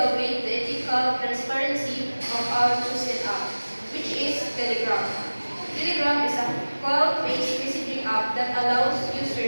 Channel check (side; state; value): both; inverted; correlation -1.00